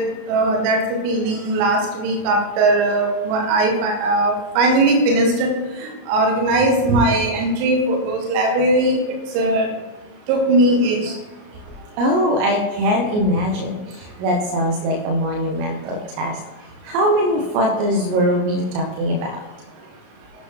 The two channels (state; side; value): late; left; 33 ms